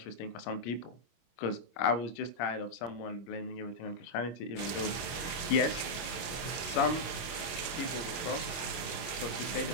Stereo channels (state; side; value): late; right; 25 ms